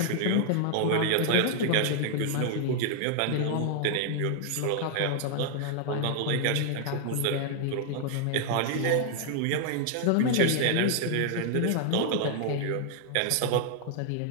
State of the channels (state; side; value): different; both; correlation 0.00